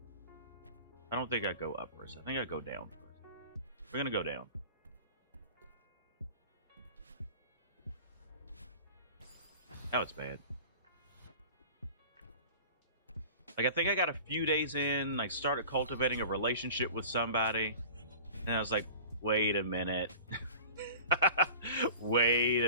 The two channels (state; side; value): inverted; both; correlation -0.40